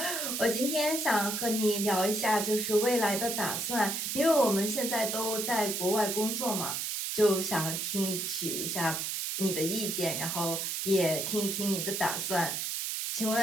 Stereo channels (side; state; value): right; noise; hiss, 2 dB below the sound